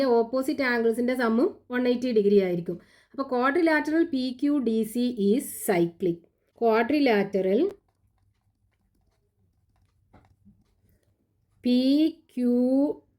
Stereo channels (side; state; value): both; identical; correlation 1.00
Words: ഓപ്പോസിറ്റ് ആംഗിൾസിൻ്റെ സമ്മും 180 ഡിഗ്രി ആയിരിക്കും. അപ്പോൾ quadrilateral P Q D C is cyclic. Quadrilateral P Q